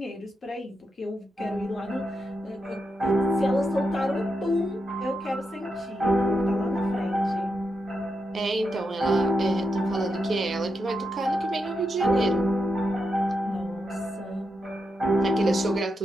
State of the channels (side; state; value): both; normal; correlation 0.85